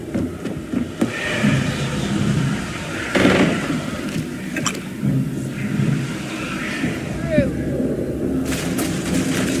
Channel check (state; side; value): identical; both; correlation 1.00